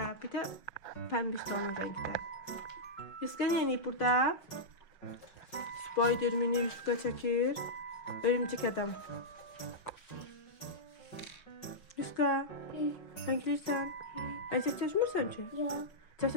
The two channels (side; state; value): right; late; 5.5 ms